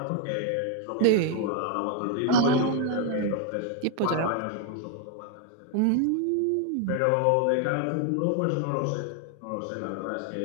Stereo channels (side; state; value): both; different; correlation 0.01